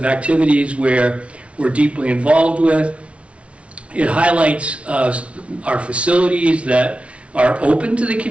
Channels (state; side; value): late; left; 0.062 ms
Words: activities where we're deeply involved with. It highlights our facilities that are open to the